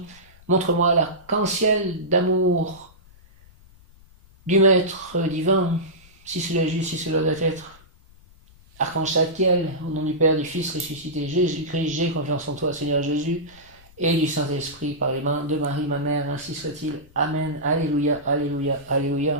Montre-moi l'arc-en-ciel d'amour du Maître divin, si cela est juste, si cela doit être. Archange Tzadkiel, au nom du Père, du Fils ressuscité Jésus-Christ, j'ai confiance en toi, Seigneur Jésus, et du Saint-Esprit par les mains de Marie, ma mère, ainsi soit-il. Amen. Alléluia, alléluia,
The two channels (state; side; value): noise; left; rumble, 25 dB below the sound